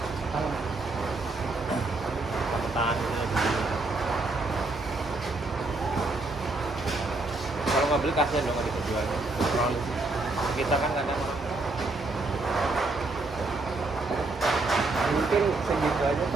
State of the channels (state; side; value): quieter; left; 3.2 dB